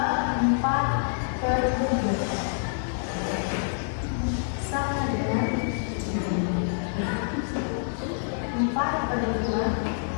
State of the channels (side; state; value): right; silent; digital silence